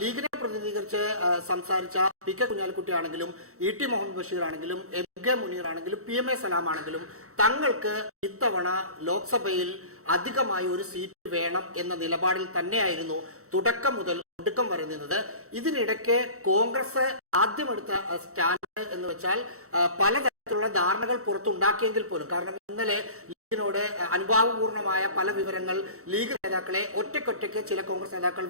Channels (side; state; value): left; late; 0.64 ms